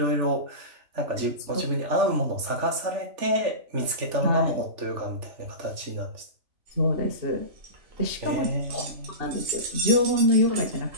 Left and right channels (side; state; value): left; late; 3.4 ms